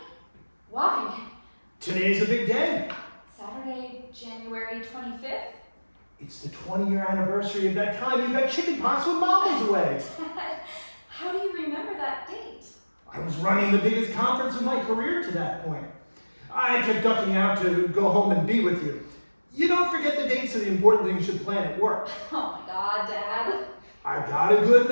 Why? Today's a big day. Saturday, January 25th? It's the 20-year anniversary of that time you got chicken pox when Mom was away. Dad, how do you remember that date? I was running the biggest conference of my career to that point. I kept ducking out to go home and be with you. You don't forget the dates of the important things you plan at work. Oh my God, Dad. I got a good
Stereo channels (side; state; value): both; inverted; correlation -1.00